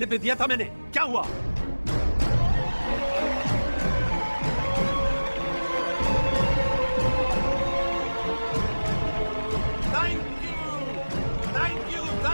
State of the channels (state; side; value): inverted; both; correlation -1.00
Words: पे दिया था मैंने, क्या हुआ?